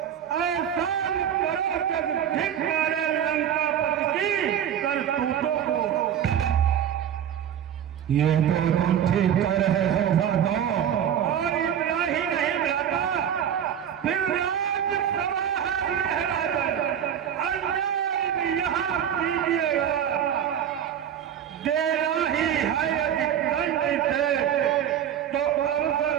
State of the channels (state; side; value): quieter; left; 9.4 dB